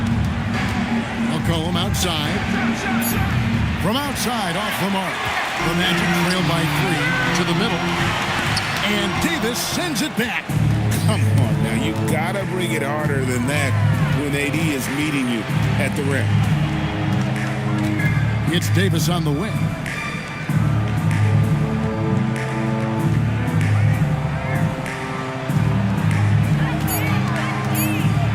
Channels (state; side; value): identical; both; correlation 1.00